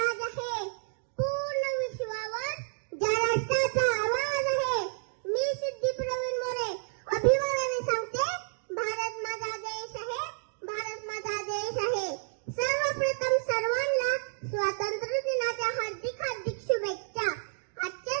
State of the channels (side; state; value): left; silent; digital silence